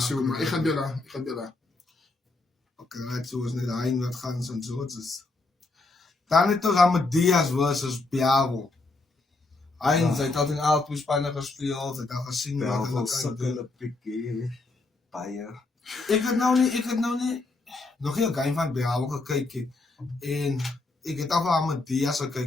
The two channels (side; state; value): right; quieter; 3.3 dB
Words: zo, maar ik ga Bella. Okay, right, so is net hy wat gaan St. Zootses. Dan het ons Amadeus versus Piavo. Hy het al in Alpo Spanje gespeel, het al gesien wat hulle kan sukkel doen. 'n bietjie baie. Ek het nou nie nog nie 'n game van Piavo gekyk nie. En ek het al van Amadeus